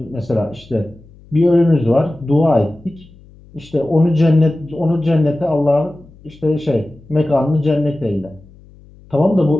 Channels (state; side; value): noise; left; hum, 24 dB below the sound